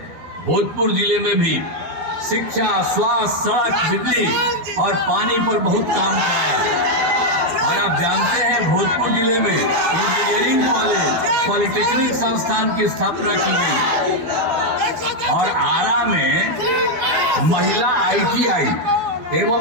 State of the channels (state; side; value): late; left; 12 ms